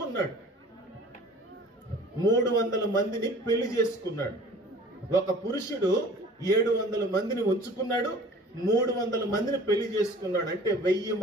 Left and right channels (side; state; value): both; normal; correlation 0.47